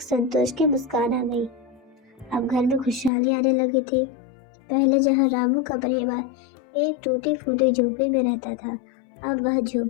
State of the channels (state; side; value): drops out; right; at 3.1 s